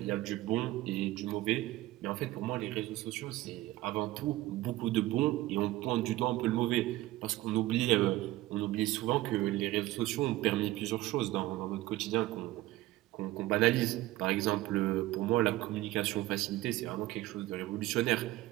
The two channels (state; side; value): quieter; left; 16.9 dB